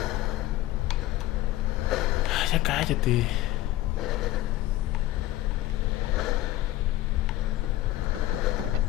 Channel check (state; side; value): quieter; right; 15.5 dB